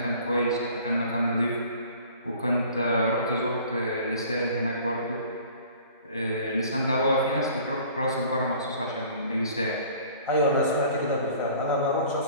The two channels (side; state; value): both; inverted; correlation -0.49